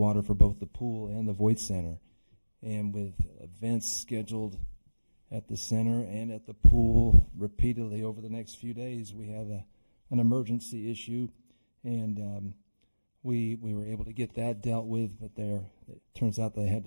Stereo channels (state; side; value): inverted; both; correlation -1.00